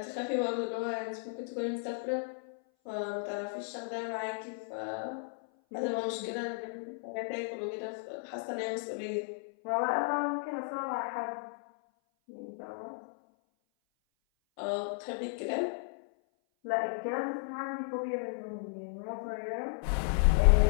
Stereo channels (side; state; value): right; silent; 55 dB below the other